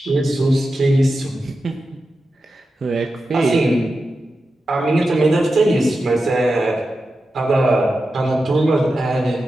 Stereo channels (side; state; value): both; normal; correlation 0.91